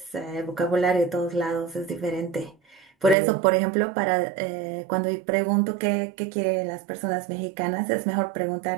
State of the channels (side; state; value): left; drops out; at 3.2 s